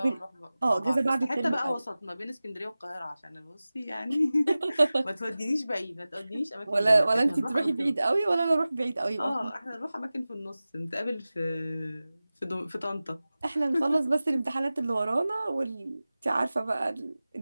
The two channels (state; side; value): inverted; both; correlation -0.97